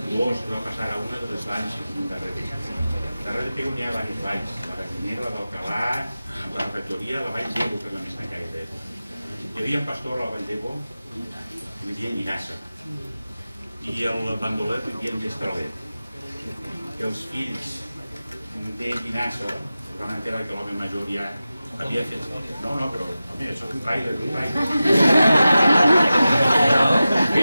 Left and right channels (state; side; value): inverted; both; correlation -0.94